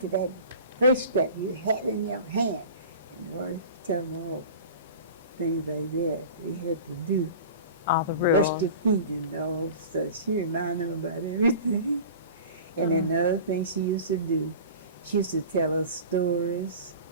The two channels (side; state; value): both; inverted; correlation -0.37